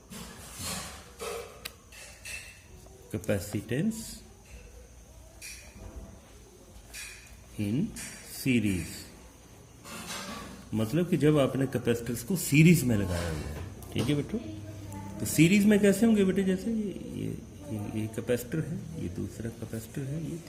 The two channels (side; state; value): both; identical; correlation 1.00